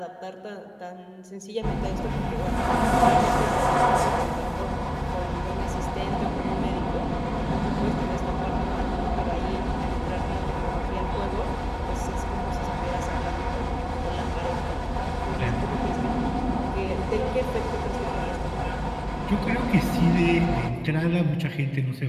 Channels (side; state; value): both; identical; correlation 1.00